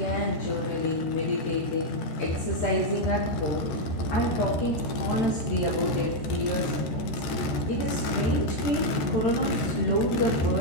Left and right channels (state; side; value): late; right; 14 ms